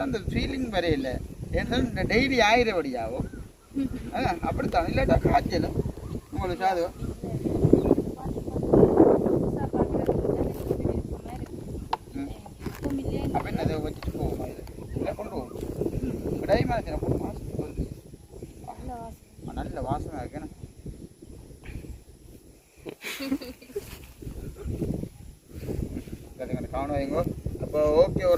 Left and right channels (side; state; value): both; identical; correlation 1.00